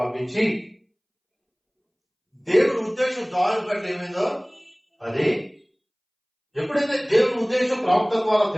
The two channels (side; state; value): both; identical; correlation 1.00